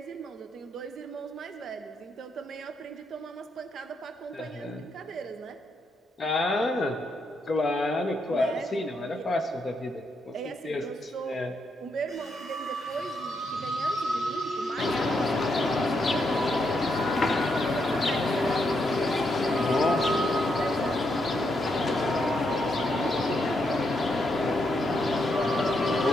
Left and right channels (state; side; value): normal; both; correlation 0.80